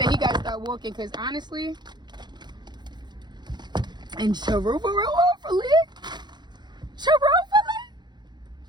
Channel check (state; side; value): late; left; 0.21 ms